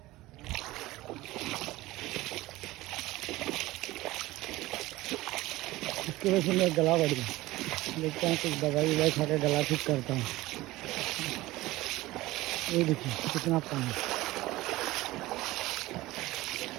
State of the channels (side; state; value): left; quieter; 18.4 dB